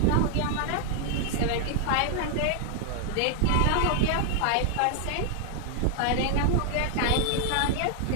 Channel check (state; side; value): different; both; correlation 0.00